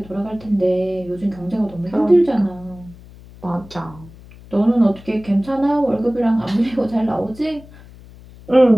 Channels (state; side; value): noise; left; hum, 21 dB below the sound